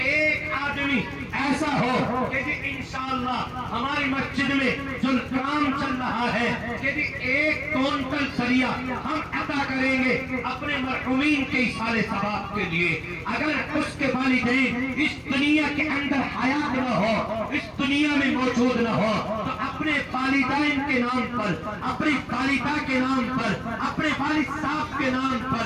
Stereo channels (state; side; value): identical; both; correlation 1.00